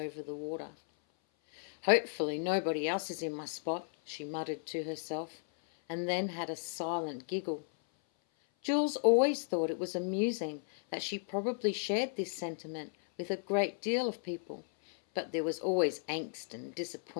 the water. Hopefully nobody else is in my spot, she muttered to herself, and then had a silent giggle. Jules always thought it was amusing that she probably shared this sentiment with a great deal of people, but there was always angst and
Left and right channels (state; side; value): silent; right; 55 dB below the other